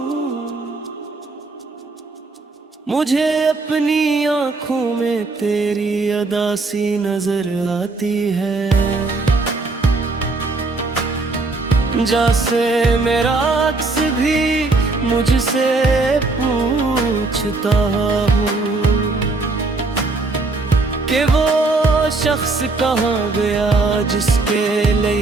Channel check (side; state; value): left; quieter; 3.5 dB